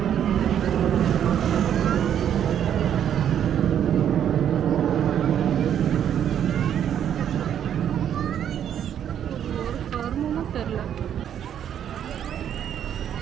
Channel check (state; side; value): quieter; left; 9.5 dB